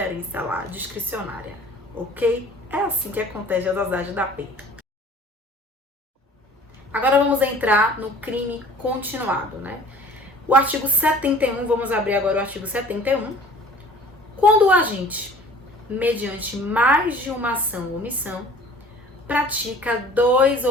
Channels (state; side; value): normal; both; correlation 0.48